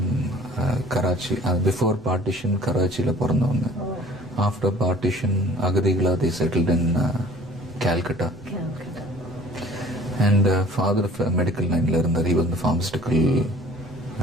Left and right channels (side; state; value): both; normal; correlation 0.47